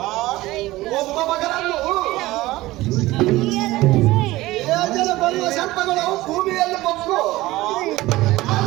ಒಬ್ಬ ಮಗನನ್ನು ಯೋಜನ ಬರುವ ಸರ್ಪಗಳು ಭೂಮಿಯಲ್ಲಿ ಬೊಕ್ಕು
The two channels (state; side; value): quieter; left; 18.1 dB